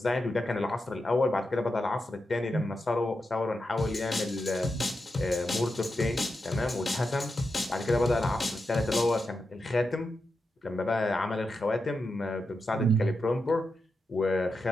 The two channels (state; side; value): normal; both; correlation 0.88